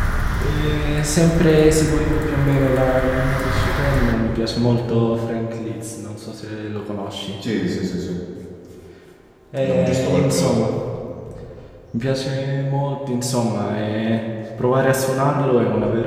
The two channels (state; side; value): identical; both; correlation 1.00